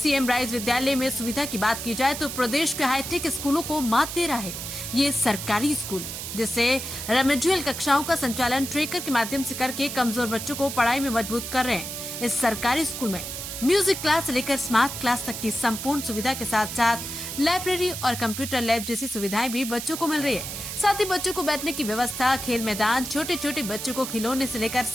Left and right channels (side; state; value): right; noise; hiss, 7 dB below the sound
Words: राइज विद्यालय में सुविधा की बात की जाए तो प्रदेश के हाईटेक स्कूलों को मात दे रहा है ये सरकारी स्कूल, जिससे रेमेडियल कक्षाओं का संचालन ट्रेकर के माध्यम से करके कमजोर बच्चों को पढ़ाई में मजबूत कर रहे हैं। इस सरकारी स्कूल में म्यूजिक क्लास से लेकर स्मार्ट क्लास तक की संपूर्ण सुविधा के साथ साथ लाइब्रेरी और कंप्यूटर लैब जैसी सुविधाएं भी बच्चों को मिल रही है। साथ ही बच्चों को बैठने की व्यवस्था, खेल मैदान, छोटे छोटे बच्चों को खिलौने से लेकर